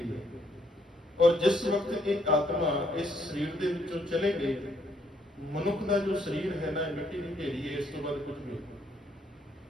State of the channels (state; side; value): normal; both; correlation 0.70